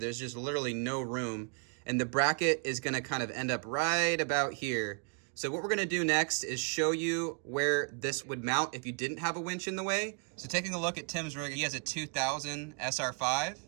just literally no room, and the bracket is gonna kind of end up right about here. So what we're gonna do next is show you where this would mount if you didn't have a winch in the way. So taking a look at Tim's rig, he has a 2000 SR5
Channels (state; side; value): quieter; left; 38.4 dB